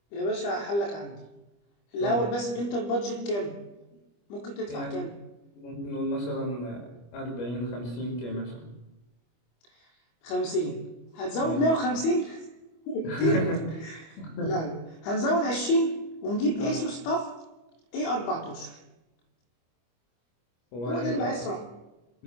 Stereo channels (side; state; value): right; late; 25 ms